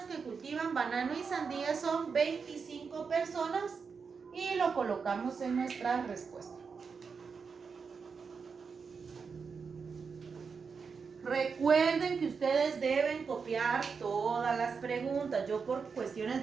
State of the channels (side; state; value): left; quieter; 5.5 dB